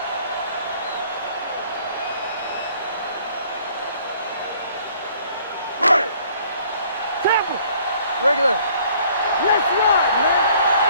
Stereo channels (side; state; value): both; inverted; correlation -0.58